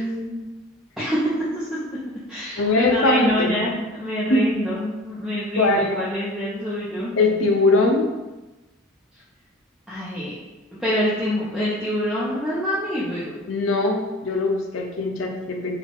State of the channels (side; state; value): both; normal; correlation 0.37